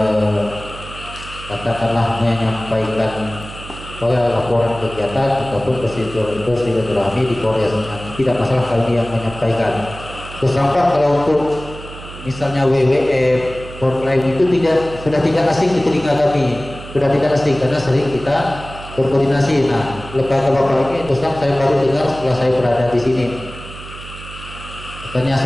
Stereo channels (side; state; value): right; noise; hum, 14 dB below the sound